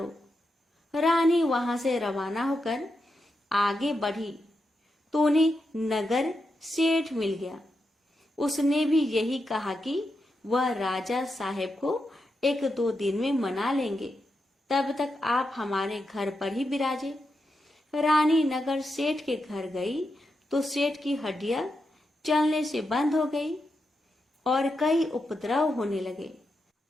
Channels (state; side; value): normal; both; correlation 0.86